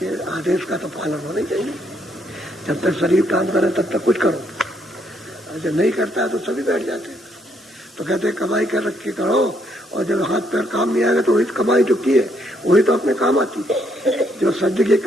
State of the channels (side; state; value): both; normal; correlation 0.72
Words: आदेश का तो पालन होना चाहिए। जब तक शरीर काम करे तब तक कुछ करो, जब नहीं करता है तो सभी बैठ जाते हैं। तो कहते हैं कमाई कर रख के करो, और जब हाथ पैर काम नहीं आएगा तो वही कमाई जो की है वही तो अपने काम आती है। जो सद्य की